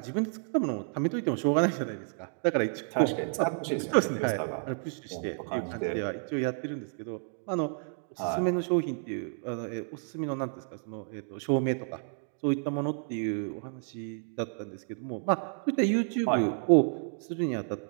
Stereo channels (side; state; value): left; silent; digital silence